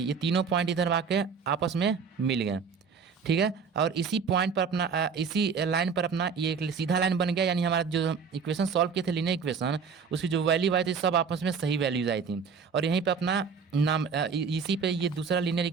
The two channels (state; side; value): quieter; left; 5.9 dB